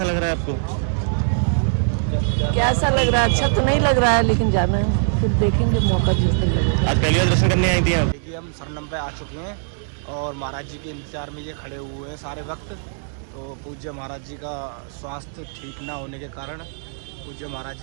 लग रहा है आपको? कैसा लग रहा है? अच्छा तो नहीं लग रहा है, लेकिन जाना है, फिर देखेंगे मौका जिस दिन लगेगा। आज पहली बार दर्शन करने आई थी आप? देखिए हम सरनम पे आ चुके हैं और महाराज जी के इंतजार में ये खड़े हुए हैं सारे वक्त। तो पूज्य महाराज जी का स्वास्थ्य ठीक ना होने के कारण पूज्य महाराज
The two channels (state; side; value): silent; left; 63 dB below the other